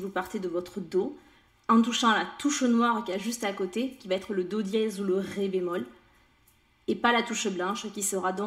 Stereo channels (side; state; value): both; identical; correlation 1.00